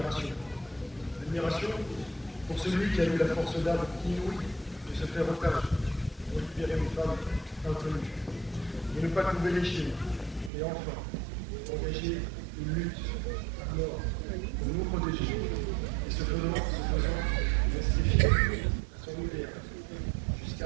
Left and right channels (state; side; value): drops out; left; at 10.5 s